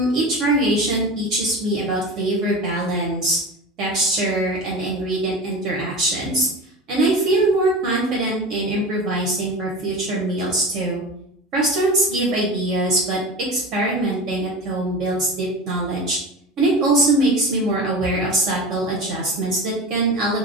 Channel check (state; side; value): normal; both; correlation 0.30